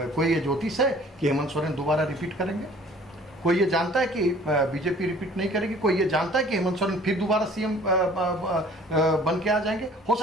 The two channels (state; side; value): normal; both; correlation 0.52